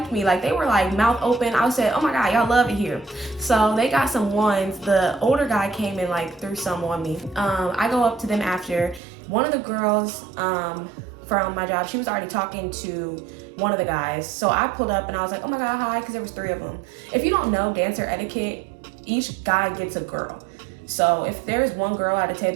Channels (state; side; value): drops out; left; at 9.0 s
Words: me. Like, they were like mouth open. I said, oh my God, y'all love it here. So they got some ones. The older guy came and like threw some on me. I go up to them after. One of the girls from my job, she was already talking to one of the guys. So I pulled up and I was like, oh my God, hi, because there was 3 of them. If you don't know dancer etiquette, each guy gets a girl. So if there's one girl at a